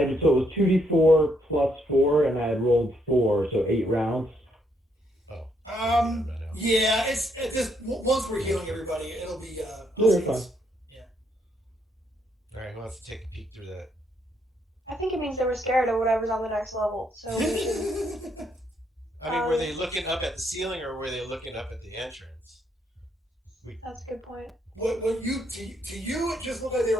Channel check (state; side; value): normal; both; correlation 0.73